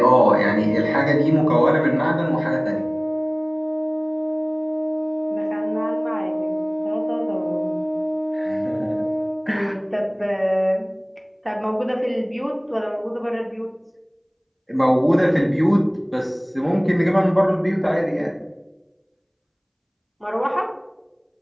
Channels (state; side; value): identical; both; correlation 1.00